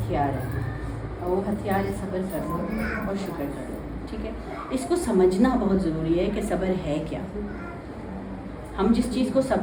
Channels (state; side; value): identical; both; correlation 1.00